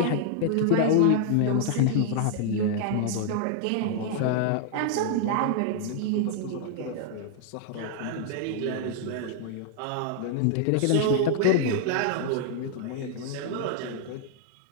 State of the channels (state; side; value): different; both; correlation -0.01